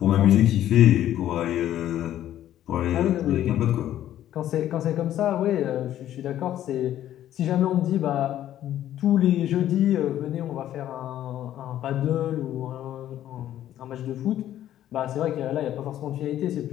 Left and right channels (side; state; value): right; quieter; 12.1 dB